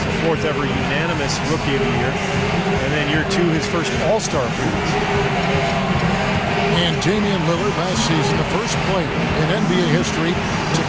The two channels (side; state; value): both; identical; correlation 1.00